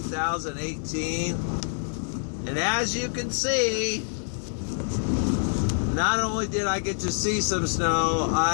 And as you can see, not only did I get to see some snow,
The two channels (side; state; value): right; silent; 61 dB below the other